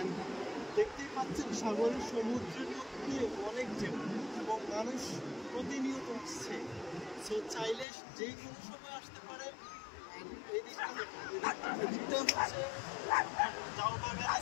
দেখতেই পাচ্ছেন সাগরের সমুদ্রের মধ্যে অনেক ঢেউ এবং মানুষ প্রতিনিয়ত আসছে। সো চাইলে যে কোনো সময় আসতে পারেন। এই দিকটা হচ্ছে জাউ বাগান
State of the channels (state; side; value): drops out; right; at 7.9 s